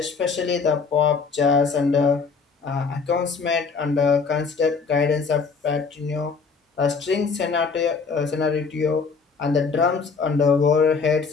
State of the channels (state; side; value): quieter; right; 5.1 dB